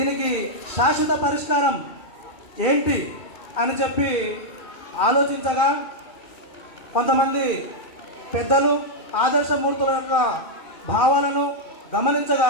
శాశ్వత పరిష్కారం ఏంటి అని చెప్పి ఆలోచించగా, కొంతమంది పెద్దలు ఆదర్శమూర్తుల యొక్క భావాలను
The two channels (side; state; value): right; late; 2.4 ms